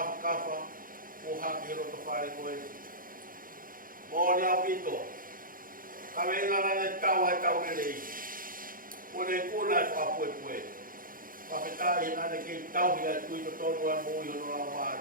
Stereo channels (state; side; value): late; left; 0.40 ms